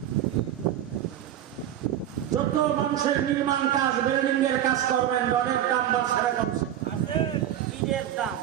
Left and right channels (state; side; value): quieter; left; 11.3 dB